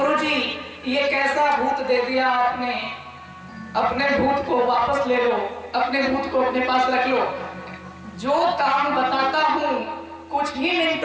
ये कैसा भूत दे दिया आपने, अपने भूत को वापस ले लो, अपने भूत को अपने पास रख लो, जो काम बताता हूँ कुछ ही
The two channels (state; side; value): identical; both; correlation 1.00